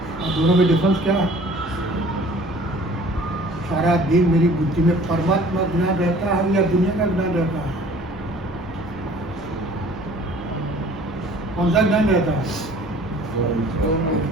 और दोनों में डिफरेंस क्या है? सारा दिन मेरी बुद्धि में परमात्मा ज्ञान रहता है या दुनिया का ज्ञान रहता है? कौन सा ज्ञान रहता है?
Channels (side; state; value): both; normal; correlation 0.51